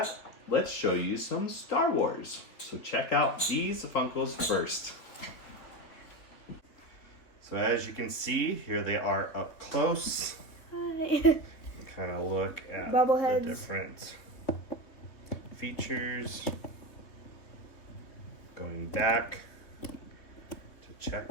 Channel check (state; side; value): late; right; 3.7 ms